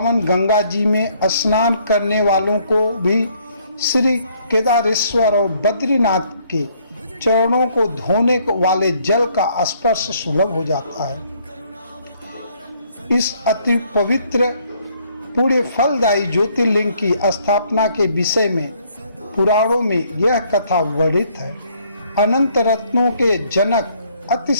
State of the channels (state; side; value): inverted; both; correlation -0.66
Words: गंगा जी में स्नान करने वालों को भी श्री केदारेश्वर और बद्रीनाथ के चरणों को धोने वाले जल का स्पर्श सुलभ हो जाता है। इस अति पवित्र पुण्य फलदायी ज्योतिर्लिंग की स्थापना के विषय में पुराणों में यह कथा वर्णित है। अनंत रत्नों के जनक,